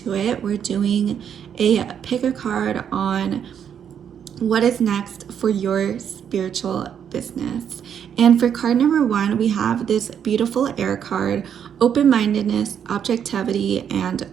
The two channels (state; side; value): quieter; left; 8.4 dB